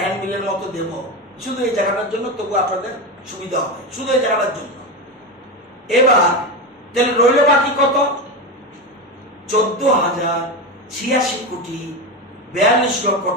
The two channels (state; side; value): normal; both; correlation 0.17